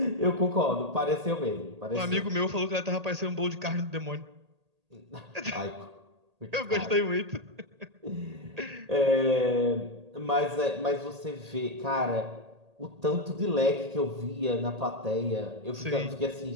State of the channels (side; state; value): left; late; 1.8 ms